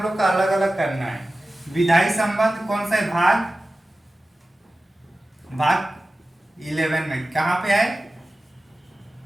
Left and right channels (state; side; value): normal; both; correlation 0.95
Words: लोग का अलग अलग करना है। विधायी संबंध कौन सा है, भाग 11 में कहाँ पे है,